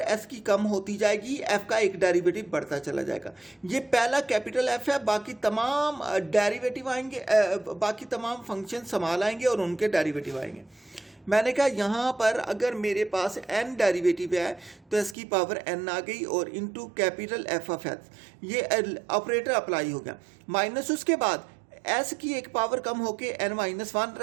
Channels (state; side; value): drops out; left; at 15.2 s